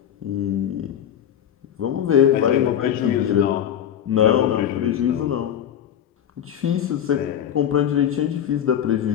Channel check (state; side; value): quieter; right; 9.8 dB